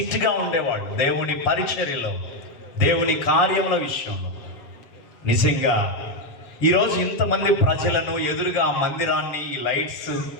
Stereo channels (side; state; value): right; late; 7.2 ms